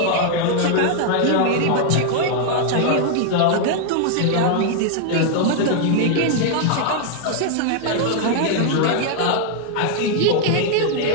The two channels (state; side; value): different; both; correlation 0.00